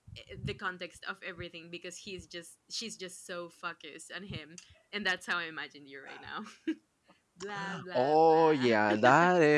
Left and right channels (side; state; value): both; identical; correlation 1.00